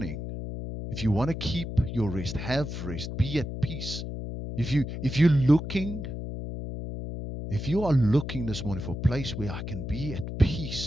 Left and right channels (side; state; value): left; noise; hum, 6 dB below the sound